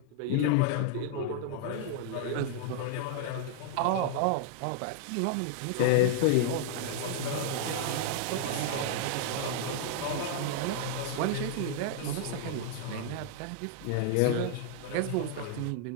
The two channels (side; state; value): both; different; correlation -0.01